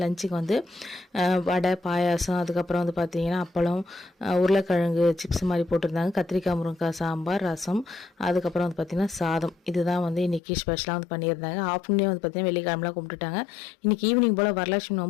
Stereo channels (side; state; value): right; drops out; at 10.4 s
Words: லஞ்சுக்கு வந்து வடை, பாயாசம், அதுக்கப்புறம் வந்து பார்த்திங்கன்னா அப்பளம், உருளைக்கிழங்கு சிப்ஸ் மாதிரி போட்டிருந்தாங்க, கத்திரிக்காய் முருங்கைக்காய் சாம்பார், ரசம், அதுக்கப்புறம் வந்து பார்த்திங்கன்னா சாதம். இதுதான் வந்து இன்றைக்கி ஸ்பெஷலாக வந்து பண்ணியிருந்தாங்க. ஆஃப்டர்நூனே வந்து பார்த்திங்கன்னா வெள்ளிக்கிழமெலாம் கும்பிட்டுட்டாங்க. இன்றைக்கி ஈவினிங் போல் வரலட்சுமி